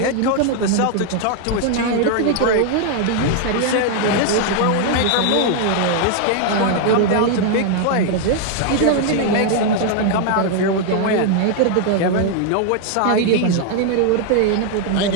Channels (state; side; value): different; both; correlation 0.00